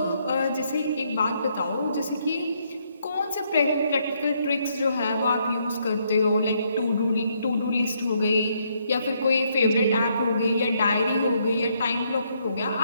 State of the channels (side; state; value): both; inverted; correlation -0.73